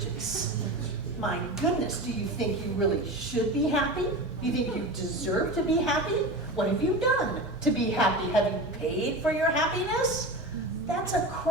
My goodness, do you think you really should be happy? Do you think you deserve to be happy? What have you done to be happy? Have you paid for your happiness? That's a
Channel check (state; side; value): normal; both; correlation 0.27